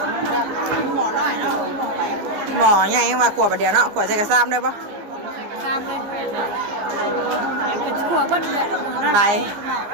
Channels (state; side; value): late; left; 15 ms